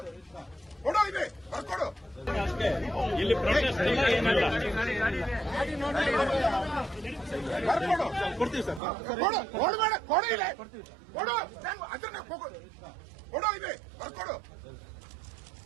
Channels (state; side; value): drops out; left; at 8.8 s